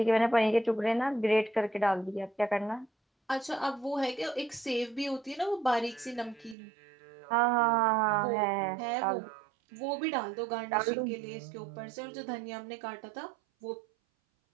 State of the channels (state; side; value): drops out; left; at 6.6 s